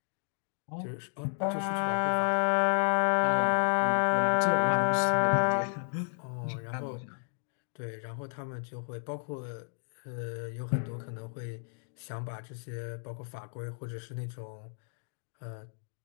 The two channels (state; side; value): silent; right; digital silence